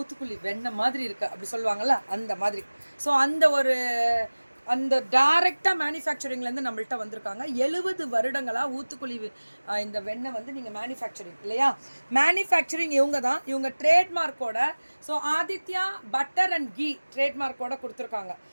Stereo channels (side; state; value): both; inverted; correlation -1.00